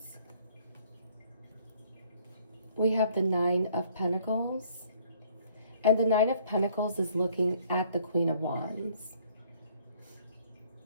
We have the Nine of Pentacles. And the Nine of Pentacles is looking at the Queen of Wands.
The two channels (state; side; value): inverted; both; correlation -0.60